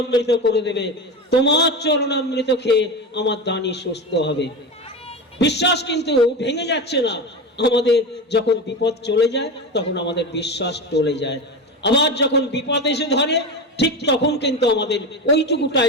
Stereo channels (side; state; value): both; normal; correlation 0.23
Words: করে দেবে, তোমার চরণামৃত খেয়ে আমার দানি সুস্থ হবে। বিশ্বাস কিন্তু ভেঙে যাচ্ছে না। আমাদের যখন বিপদ চলে যায় তখন আমাদের বিশ্বাস টলে যায়, আবার যখন বিপদ এসে ধরে ঠিক তখন কিন্তু আমাদের ওইটুকু